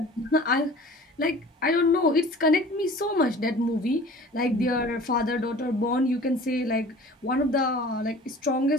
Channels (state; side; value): normal; both; correlation 0.45